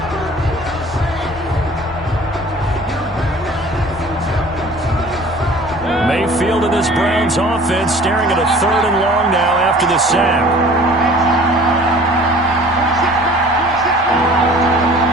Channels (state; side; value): normal; both; correlation 0.48